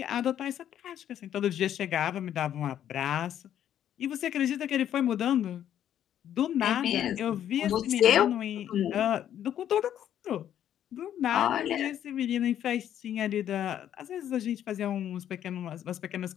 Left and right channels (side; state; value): right; quieter; 10.5 dB